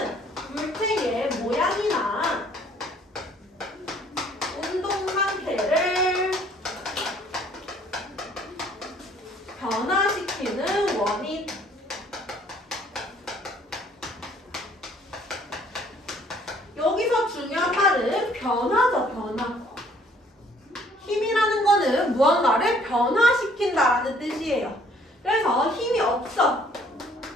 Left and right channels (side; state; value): both; normal; correlation 0.60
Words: 물체의 모양이나 운동 상태를 변화시키는 원인. 여기서 중요한 말은 변화죠, 변화. 힘이라는 거는 무언가를 변화시킨다라는 뜻이에요. 그래서 힘이 없어.